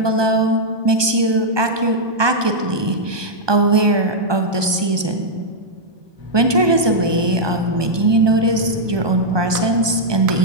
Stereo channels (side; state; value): left; late; 1.2 ms